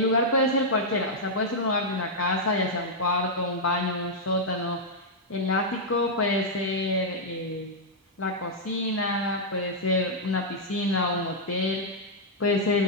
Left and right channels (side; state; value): both; normal; correlation -0.06